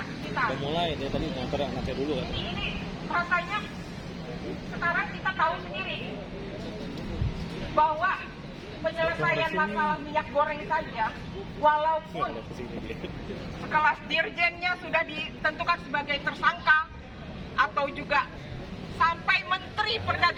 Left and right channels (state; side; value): identical; both; correlation 1.00